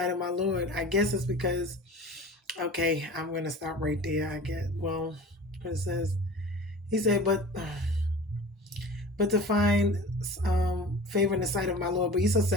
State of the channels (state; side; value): normal; both; correlation 0.38